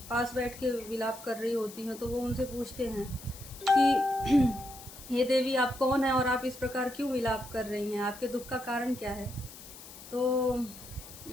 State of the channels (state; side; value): noise; left; hiss, 16 dB below the sound